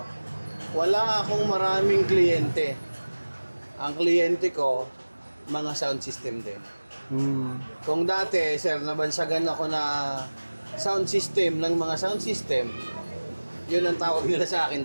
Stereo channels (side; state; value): both; inverted; correlation -1.00